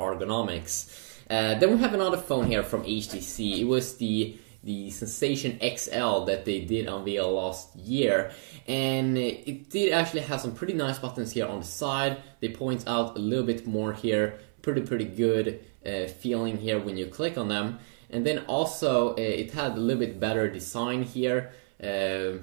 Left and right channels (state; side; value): silent; left; 56 dB below the other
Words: Then we have another phone here from HTC. It was the Sensation XL that they did unveil last year, and it did actually have some pretty nice buttons here on the side. They point out a little bit more here, pretty good feeling here when you click on them. And then also it had a little bit better design here,